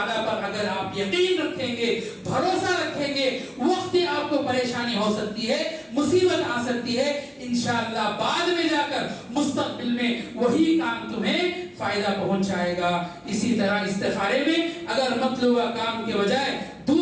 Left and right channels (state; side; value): identical; both; correlation 1.00